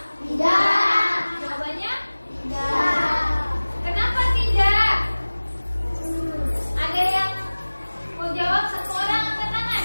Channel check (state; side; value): inverted; both; correlation -1.00